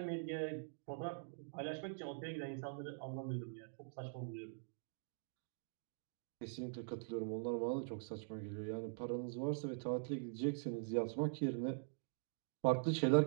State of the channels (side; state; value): left; silent; digital silence